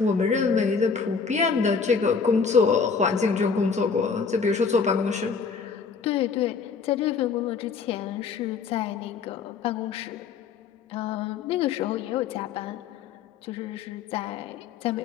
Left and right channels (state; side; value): quieter; right; 5.5 dB